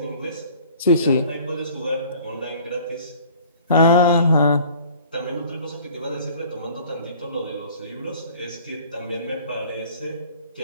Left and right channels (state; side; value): inverted; both; correlation -0.50